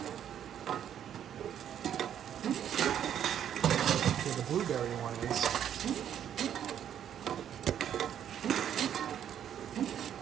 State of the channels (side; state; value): left; quieter; 9.7 dB